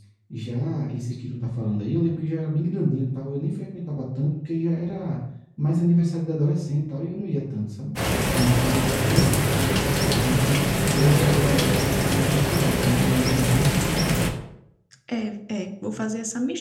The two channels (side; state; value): both; identical; correlation 1.00